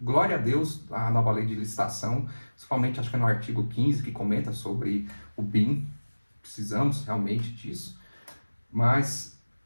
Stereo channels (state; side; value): inverted; both; correlation -1.00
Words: Glória a Deus, a nova lei de licitação, principalmente acho que é no artigo 15, que comenta sobre o BIM, precisamos realmente disso, mas